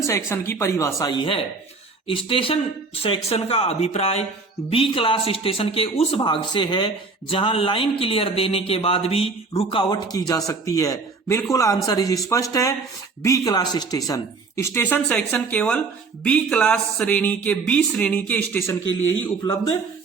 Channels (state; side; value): quieter; left; 4.2 dB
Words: सेक्शन की परिभाषा ही है। स्टेशन सेक्शन का अभिप्राय बी क्लास स्टेशन के उस भाग से है जहां लाइन क्लियर देने के बाद भी रुकावट की जा सकती है। बिल्कुल आंसर इज स्पष्ट है, B class station. Station section केवल बी क्लास श्रेणी के, बी श्रेणी के स्टेशन के लिए ही उपलब्ध